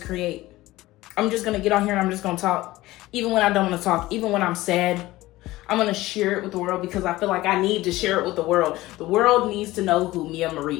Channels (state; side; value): quieter; right; 17.9 dB